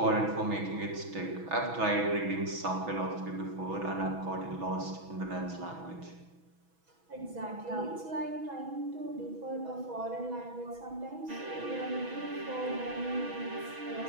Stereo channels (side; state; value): left; late; 6.1 ms